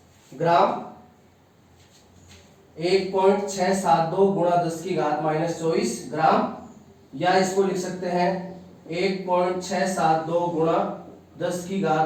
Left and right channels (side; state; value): both; identical; correlation 1.00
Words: ग्राम। 1.672 गुणा 10 की घात माइनस 24 ग्राम, या इसको लिख सकते हैं 1.672 गुणा 10 की